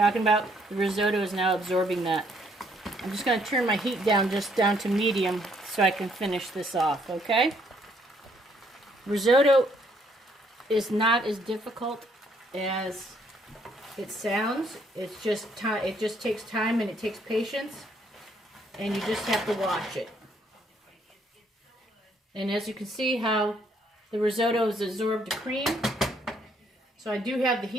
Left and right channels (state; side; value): normal; both; correlation 0.68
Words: about? The risotto is now absorbing that. I'm just going to turn my heat down just down to medium so I can finish this off, okay? Risotto is not as difficult as it sounds. It's just time. It just takes time and it takes patience, and you just have to watch it. And as you can see how the risotto has absorbed the cream. So I do have the